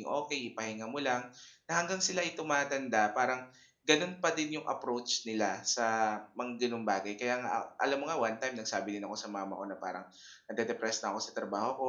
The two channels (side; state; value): both; identical; correlation 1.00